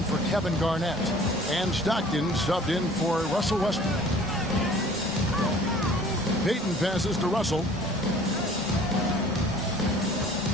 for Kevin Garnett. And Stockton subbed in for Russell Westbrook. Payton passes to Russell.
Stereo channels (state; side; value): normal; both; correlation 0.50